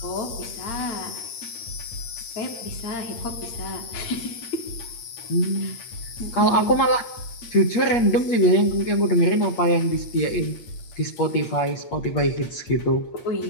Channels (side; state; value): right; late; 8.6 ms